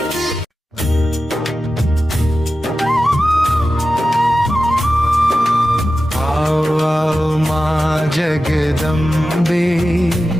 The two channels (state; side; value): normal; both; correlation 0.93